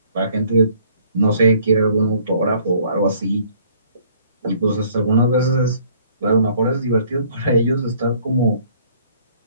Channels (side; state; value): both; inverted; correlation -0.60